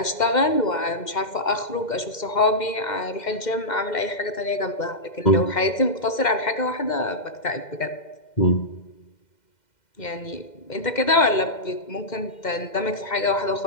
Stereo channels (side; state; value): right; late; 2.1 ms